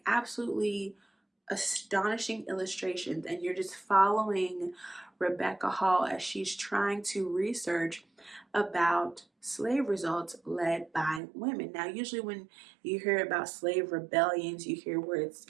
absolutely astonishing illustrations, and you're just following Rebecca Hall as she's trying to research about slave results led by women. Now, usually when you hear about slave rebellions, you hear words,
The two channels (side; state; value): left; drops out; at 11.2 s